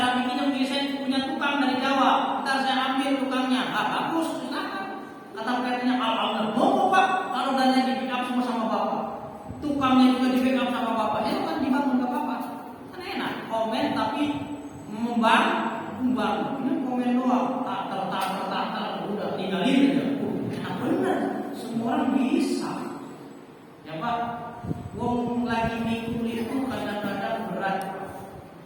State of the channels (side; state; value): both; identical; correlation 1.00